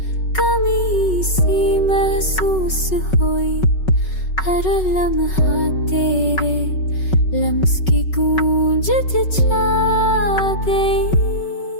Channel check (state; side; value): late; right; 5.4 ms